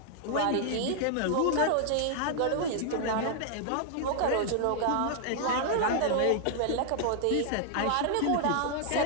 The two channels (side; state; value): both; different; correlation -0.01